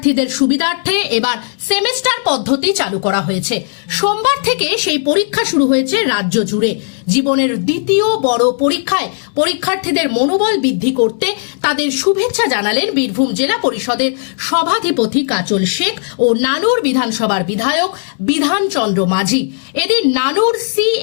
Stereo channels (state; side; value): silent; right; digital silence